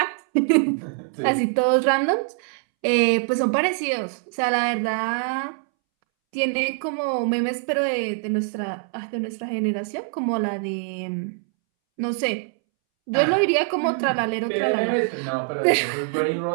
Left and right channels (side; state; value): left; silent; 63 dB below the other